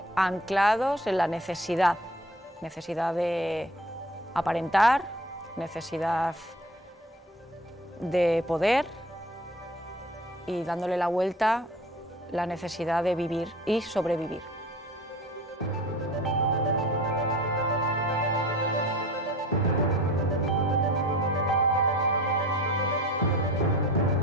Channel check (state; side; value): normal; both; correlation 0.43